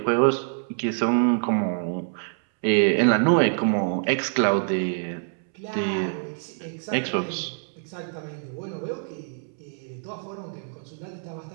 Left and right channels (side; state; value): left; silent; 61 dB below the other